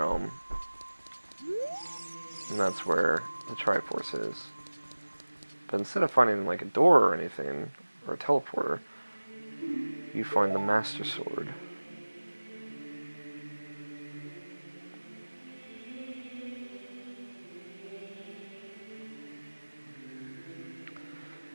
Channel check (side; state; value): both; inverted; correlation -1.00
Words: And that's where the Triforce is. But instead of finding like a door or anything, or a teleporter, you find the Master Sword.